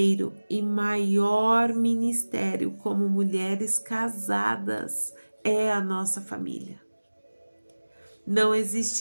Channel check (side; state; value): both; inverted; correlation -1.00